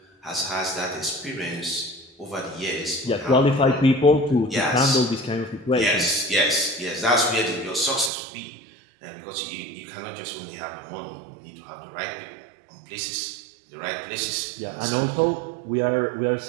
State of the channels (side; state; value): left; drops out; at 8.1 s